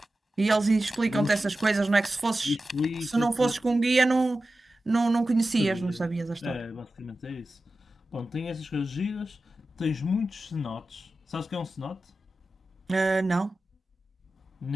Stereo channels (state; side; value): normal; both; correlation 0.94